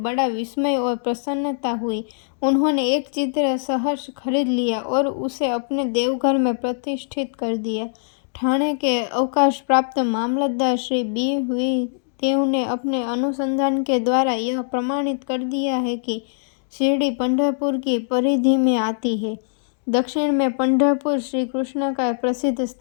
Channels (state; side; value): silent; right; digital silence